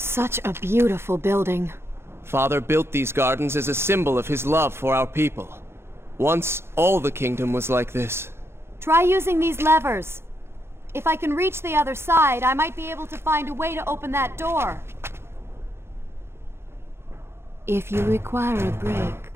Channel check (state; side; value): late; left; 0.12 ms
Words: Such a beautiful building. Father built these gardens as a symbol of his love for our people. Once, all the kingdom was like this. Try using these levers. If I can reach the other side, I might be able to find a way to open that door. If you require a break,